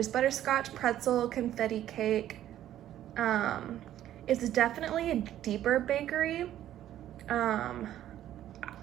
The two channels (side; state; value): left; quieter; 12.2 dB